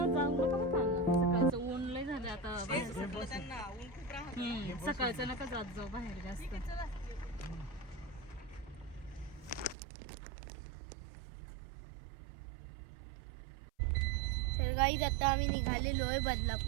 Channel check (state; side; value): drops out; left; at 9.8 s